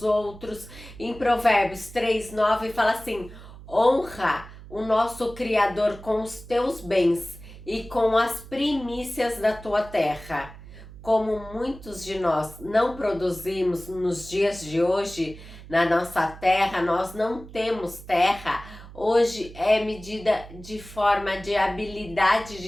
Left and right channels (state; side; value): noise; right; hum, 17 dB below the sound